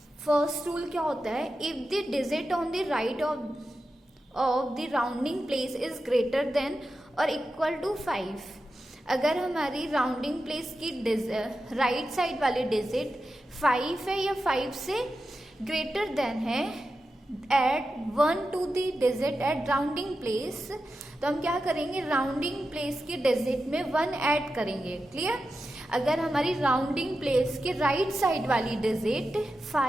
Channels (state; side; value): normal; both; correlation 0.91